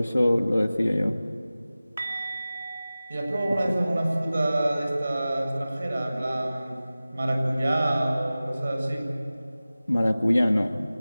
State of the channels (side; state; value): both; inverted; correlation -0.97